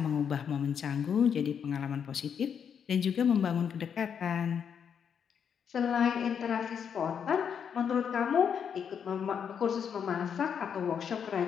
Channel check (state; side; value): quieter; right; 7.5 dB